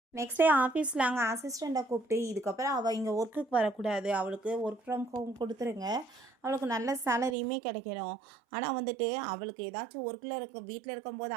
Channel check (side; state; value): left; drops out; at 7.4 s